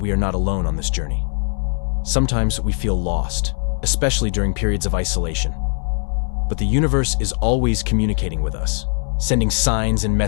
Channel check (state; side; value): silent; right; 62 dB below the other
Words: are not alone on this journey. Sometimes we feel lost, especially during periods of isolation. But the universe is always communicating with us, sending signs and